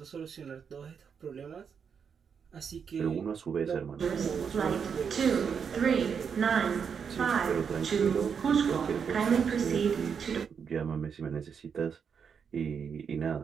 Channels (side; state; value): left; quieter; 6.7 dB